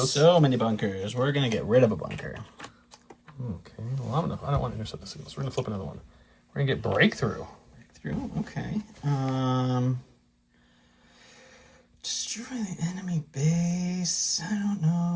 So many bunkers. We're going to get rid of a bunker. Okay. Well, I don't want to intercept the signals. We're going to flip another one. We're going to get Breakthrough. Okay. Destroy the enemy base. I don't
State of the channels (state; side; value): identical; both; correlation 1.00